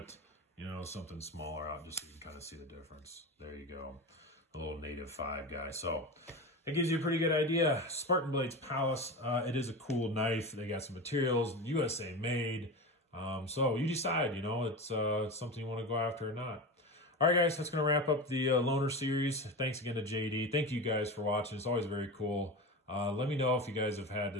something smaller out just so you can kind of see the difference. There you go. A little native 5 guy. So it gives you a pretty good idea. Spartan Blades Pallas. It is a cool knife. They got some materials, USA made. So you decide, it's something you want to go after or not. All right, guys, that's going to wrap up the loaner series. Thanks again to JD. Thank you guys for watching. It's always very cool. Let me know if you guys have had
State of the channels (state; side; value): normal; both; correlation 0.25